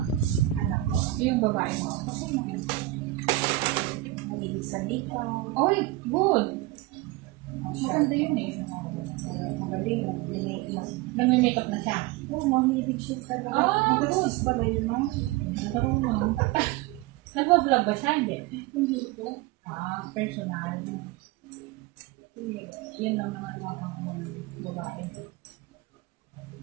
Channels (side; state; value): left; quieter; 17.9 dB